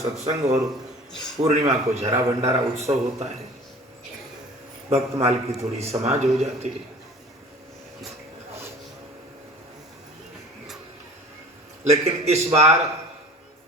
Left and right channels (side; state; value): both; normal; correlation 0.44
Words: सत्संग और पूर्णिमा को झरा भंडारा उत्सव होता है। भक्तमाल की थोड़ी समाज हो जाती है। लेकिन इस बार